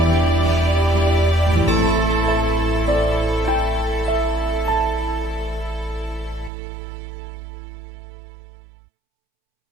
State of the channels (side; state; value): left; drops out; at 6.5 s